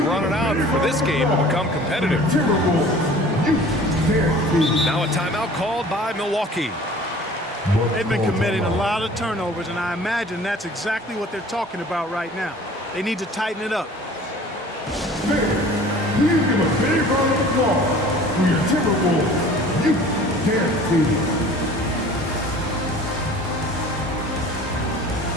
running out for this game to become competitive. Timberwolves. You can't see. Now a timeout called by Milwaukee. They've been committing a lot of turnovers, and I imagine that's exactly what they're talking about right now. They need to tighten it up. Fans, please give a big round of applause for your Timberwolves. You can't see.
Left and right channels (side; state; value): both; normal; correlation 0.46